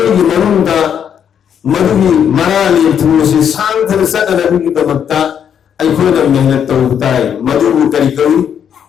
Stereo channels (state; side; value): quieter; right; 8.5 dB